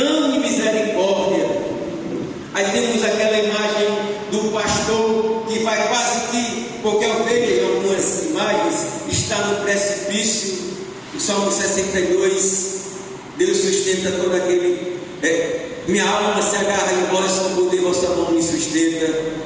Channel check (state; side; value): identical; both; correlation 1.00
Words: e misericórdia. Aí temos aquela imagem do pastor que vai quase que, porque a ovelha em algumas imagens está no precipício. O Salmo 62, Deus sustenta todo aquele, minha alma se agarra em vós, com poder vossa mão me sustenta.